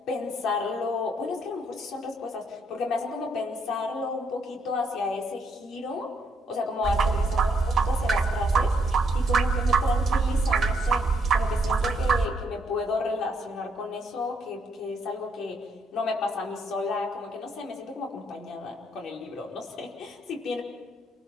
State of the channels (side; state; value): both; normal; correlation 0.72